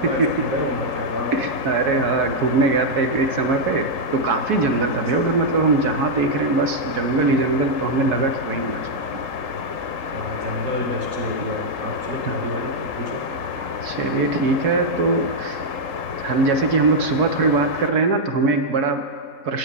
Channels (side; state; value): left; late; 3.8 ms